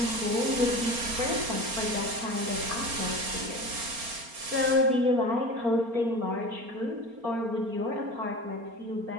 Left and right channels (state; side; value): late; left; 4.3 ms